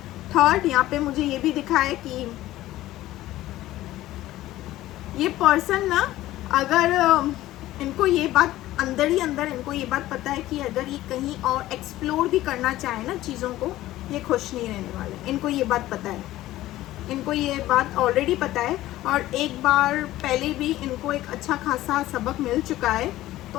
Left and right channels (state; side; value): quieter; right; 15.5 dB